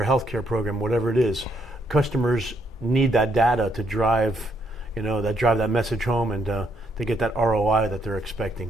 healthcare program, whatever it is. Customers need that data to drive that message home and to get that ROI that they're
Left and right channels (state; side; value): normal; both; correlation 0.73